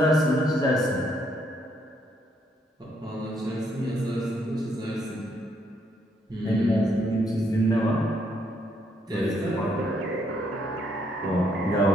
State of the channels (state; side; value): normal; both; correlation 0.72